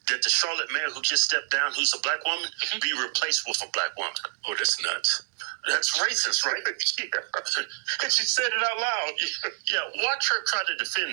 that the Charlotte mayor who just stepped down, who's a black woman, be replaced with a black woman. Oh, that's nuts. That's racist, right? Yeah. And she said it out loud. Yeah, watch her try to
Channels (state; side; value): silent; left; digital silence